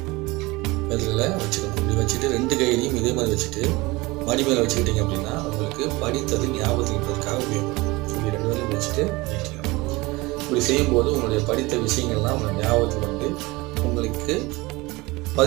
விரலில் வச்சுக்கணும். இப்படி வச்சுட்டு 2 கையிலையும் இதே மாதிரி வச்சுட்டு மடி மேலே வச்சுக்கிட்டீங்க அப்படின்னா உங்களுக்கு படித்தது ஞாபகத்துக்காக உபயோகப்படும். இப்படி 2 விரலையும் வச்சுட்டு நீட்டிக்கணும். இப்படி செய்யும்போது உங்களுடைய படித்த விஷயங்கள்லாம் உங்கள் ஞாபகத்துக்கு உங்களுக்கு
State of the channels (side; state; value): left; quieter; 22.4 dB